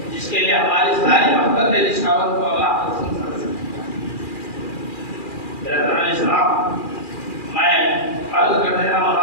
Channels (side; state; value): right; late; 2.4 ms